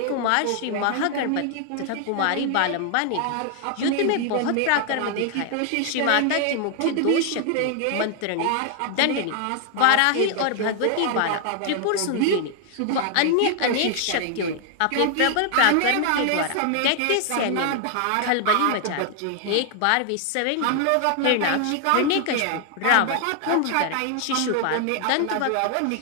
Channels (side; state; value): both; different; correlation 0.00